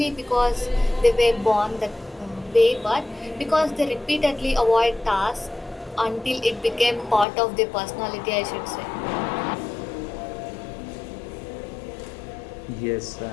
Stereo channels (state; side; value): drops out; right; at 7.2 s